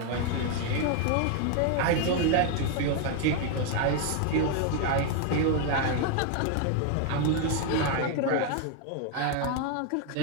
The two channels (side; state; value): both; different; correlation 0.01